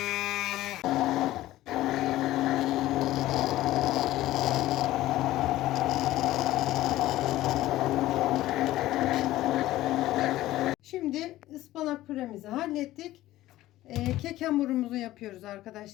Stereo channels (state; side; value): quieter; right; 15.6 dB